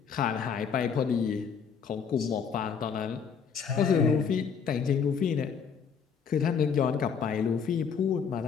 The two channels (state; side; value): quieter; right; 6.6 dB